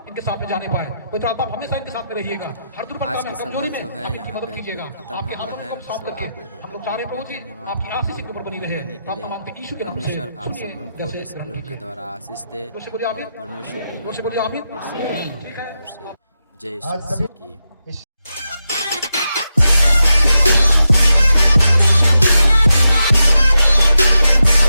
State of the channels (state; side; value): inverted; both; correlation -0.88